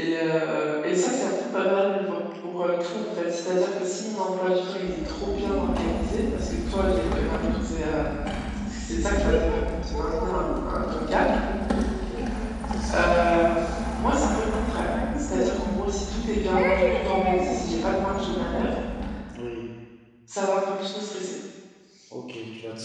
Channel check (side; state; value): both; identical; correlation 1.00